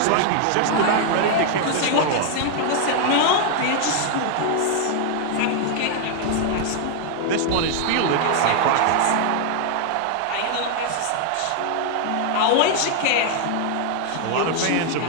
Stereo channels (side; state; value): both; different; correlation 0.00